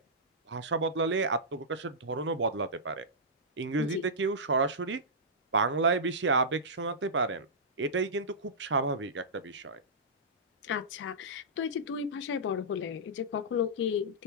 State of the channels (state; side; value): normal; both; correlation -0.16